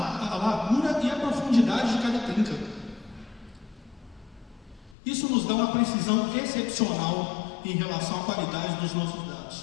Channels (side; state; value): right; drops out; at 5.0 s